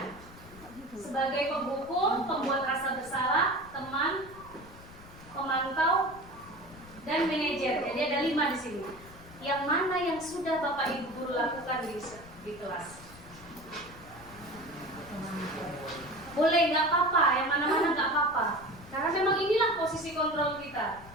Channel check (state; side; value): noise; left; rumble, 19 dB below the sound